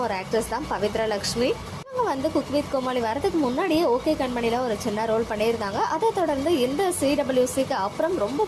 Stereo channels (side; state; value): both; identical; correlation 1.00